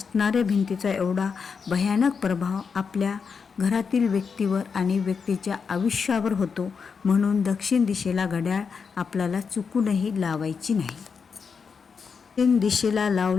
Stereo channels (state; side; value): quieter; right; 5.8 dB